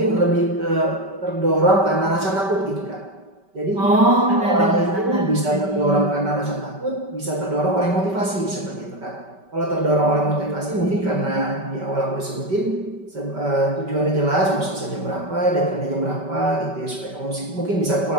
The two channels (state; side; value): late; left; 5.2 ms